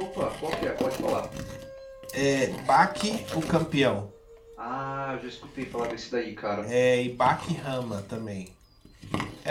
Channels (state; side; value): identical; both; correlation 1.00